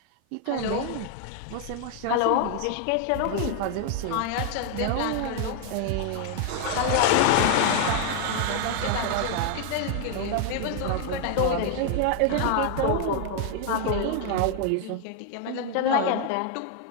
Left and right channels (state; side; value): different; both; correlation 0.00